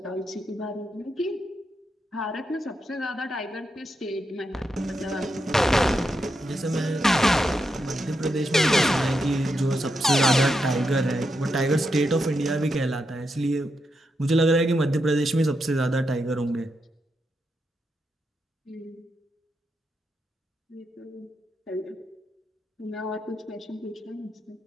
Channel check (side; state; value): both; normal; correlation 0.84